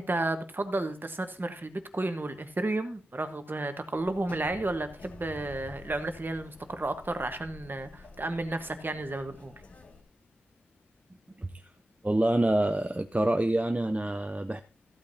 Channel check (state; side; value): normal; both; correlation 0.92